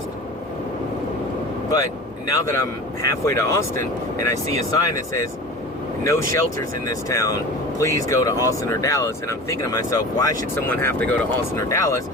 but now that I'm halfway to Austin and I see a sign that says no shelters in this town, please go to Austin or Dallas, and I'm thinking to myself, why should someone have to go to Austin or Dallas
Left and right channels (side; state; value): both; normal; correlation 0.35